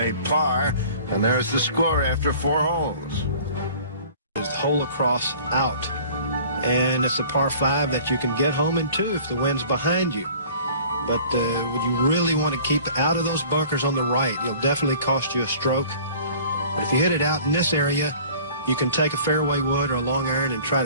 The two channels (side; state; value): both; inverted; correlation -0.47